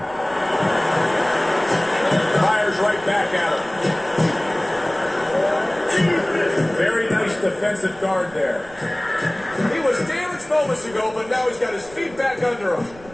defensive guard there. He was damaged moments ago, but now he's got his feet back under him.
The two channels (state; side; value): noise; right; rumble, 21 dB below the sound